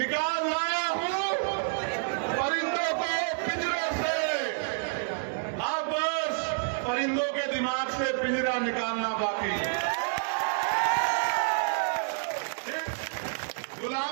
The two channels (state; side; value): silent; left; 59 dB below the other